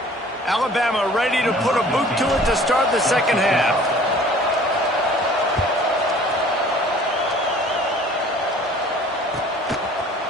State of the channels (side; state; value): both; normal; correlation 0.50